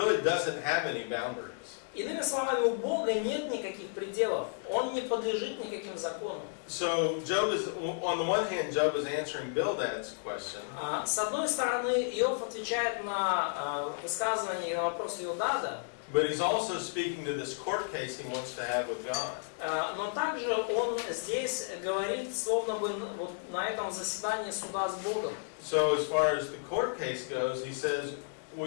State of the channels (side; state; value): right; silent; digital silence